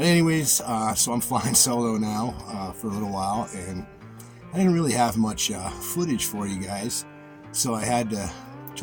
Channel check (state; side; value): identical; both; correlation 1.00